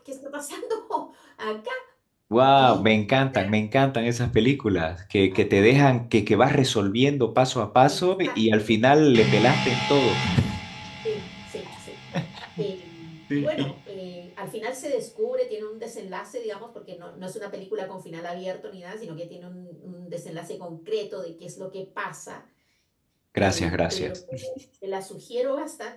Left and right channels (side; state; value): both; identical; correlation 1.00